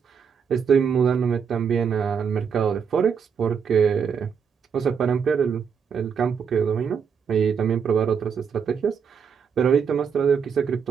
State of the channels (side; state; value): left; quieter; 6.7 dB